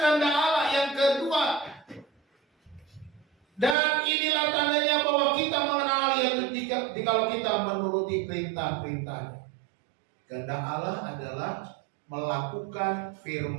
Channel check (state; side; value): drops out; left; at 3.8 s